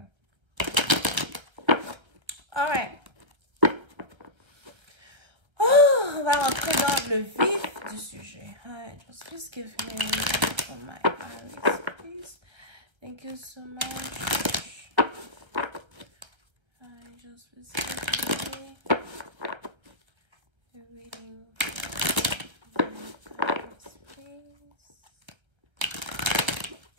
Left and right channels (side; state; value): left; late; 1.3 ms